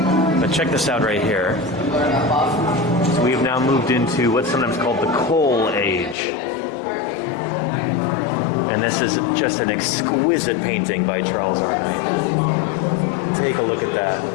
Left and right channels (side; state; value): right; drops out; at 6.2 s